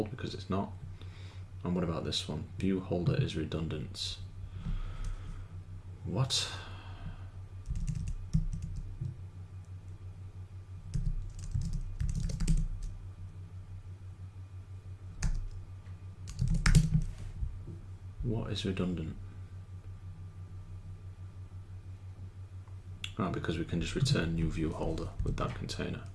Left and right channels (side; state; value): both; identical; correlation 1.00